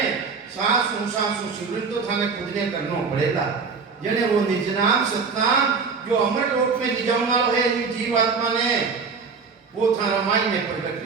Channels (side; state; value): left; quieter; 5.1 dB